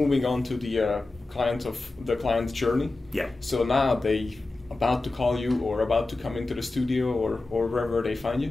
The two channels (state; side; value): quieter; right; 3.2 dB